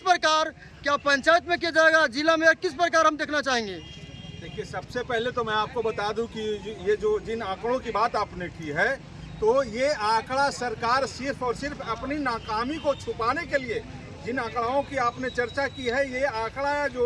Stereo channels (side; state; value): both; identical; correlation 1.00